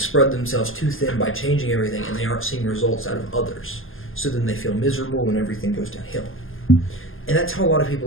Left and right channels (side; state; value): right; late; 0.59 ms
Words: themselves too thin by changing everything and they aren't seeing results out of others. So then they feel miserable and everything goes downhill. And that's how a lot of